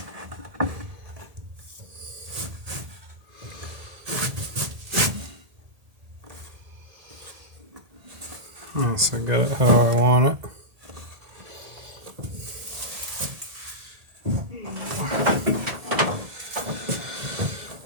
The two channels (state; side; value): late; left; 1.8 ms